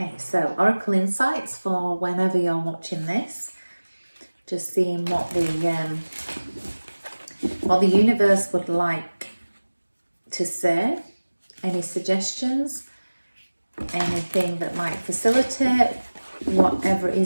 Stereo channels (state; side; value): inverted; both; correlation -1.00